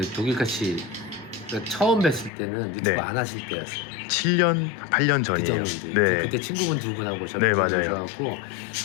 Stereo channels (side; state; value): right; drops out; at 2.3 s